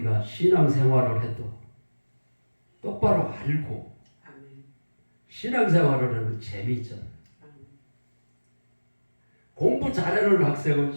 신앙생활을 해도 똑바로 알고 신앙생활을 하면 재미있잖아요. 공부 잘하는 학생은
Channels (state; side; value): inverted; both; correlation -1.00